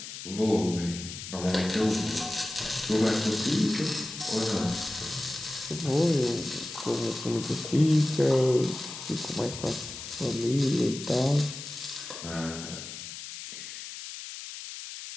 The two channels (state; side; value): noise; left; hiss, 10 dB below the sound